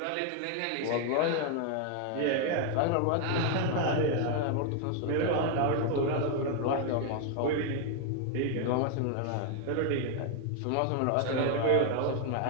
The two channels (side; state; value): both; different; correlation 0.01